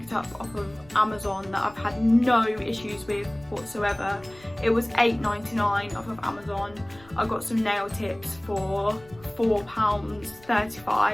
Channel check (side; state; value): left; noise; rumble, 24 dB below the sound